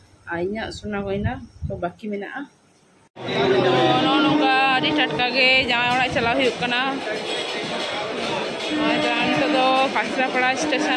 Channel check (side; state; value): both; identical; correlation 1.00